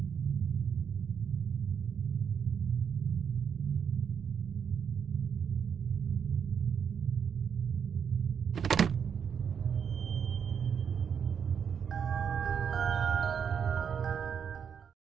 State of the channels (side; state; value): left; quieter; 7.3 dB